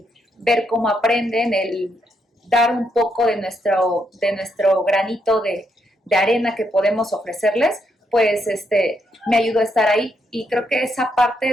ver cómo aprenden, el dar un poco de nuestro granito de arena que podemos ofrecerles, pues me ayudó a estar ahí. Y creo que esa parte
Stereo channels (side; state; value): both; normal; correlation 0.77